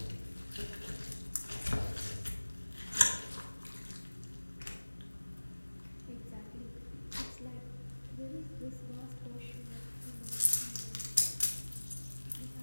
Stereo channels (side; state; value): both; inverted; correlation -1.00